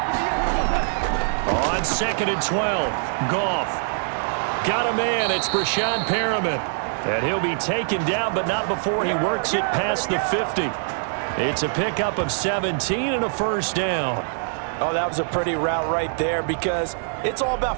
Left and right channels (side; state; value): left; silent; 63 dB below the other